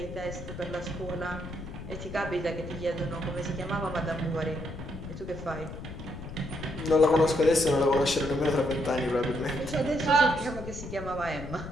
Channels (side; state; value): left; noise; rumble, 10 dB below the sound